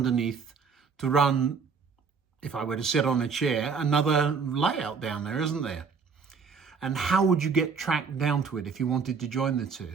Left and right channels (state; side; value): quieter; left; 5.6 dB